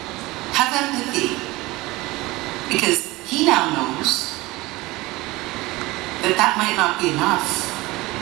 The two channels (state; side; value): quieter; left; 20.6 dB